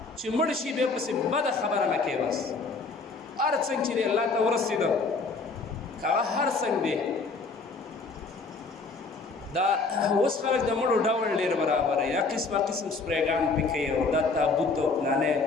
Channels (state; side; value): quieter; right; 4.1 dB